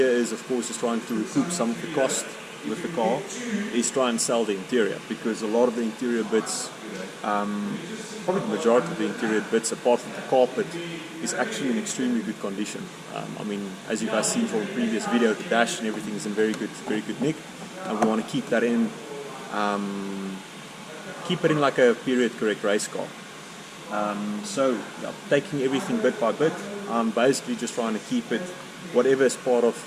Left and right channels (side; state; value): both; identical; correlation 1.00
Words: is, of course, is trying to recoup some of the cost with the car, is try and sell the interior, because a lot of the interior bits, probably the majority of the interior bits apart from the carpet, is actually in extremely good condition. I mean, as you guys seen from the previous video, the dash and everything is in very good nick, and we want to keep that in, keep it in like a period correct race car. So yeah, taking everything bit by bit, basically just trying to keep it, whatever